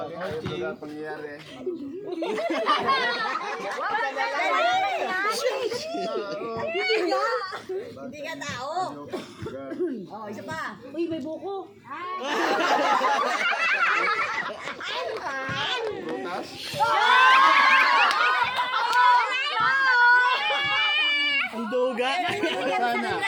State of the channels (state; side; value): identical; both; correlation 1.00